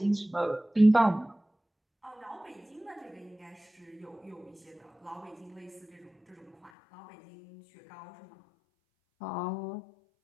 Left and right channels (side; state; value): right; drops out; at 6.7 s